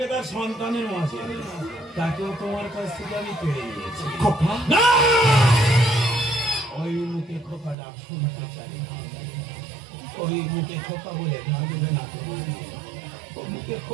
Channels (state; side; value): drops out; left; at 7.8 s